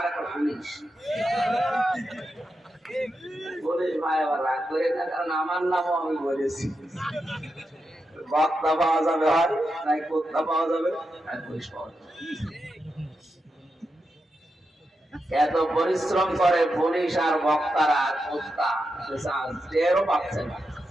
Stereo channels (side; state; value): both; normal; correlation 0.87